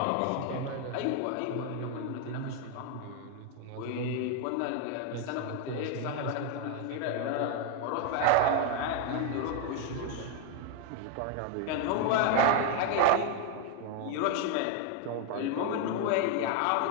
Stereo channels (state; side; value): different; both; correlation 0.01